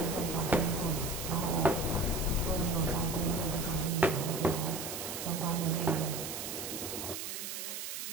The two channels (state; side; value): noise; right; hiss, 5 dB below the sound